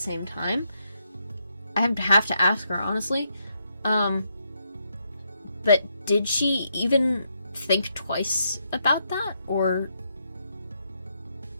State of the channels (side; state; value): both; inverted; correlation -0.78